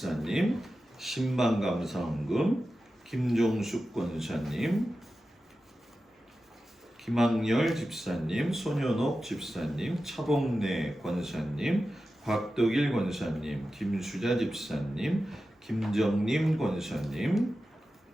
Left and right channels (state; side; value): normal; both; correlation 0.93